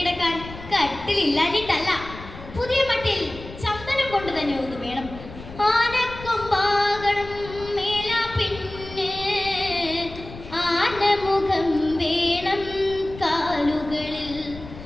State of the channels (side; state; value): left; noise; rumble, 14 dB below the sound